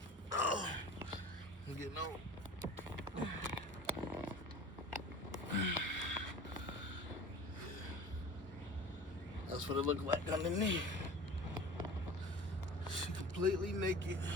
Oh, I'm getting old. That's what it looked like underneath. She completely naked.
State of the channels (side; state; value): both; normal; correlation 0.40